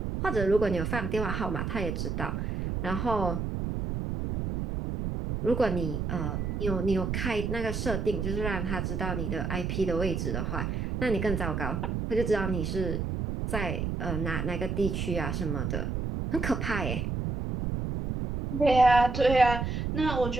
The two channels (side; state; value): right; noise; rumble, 2 dB below the sound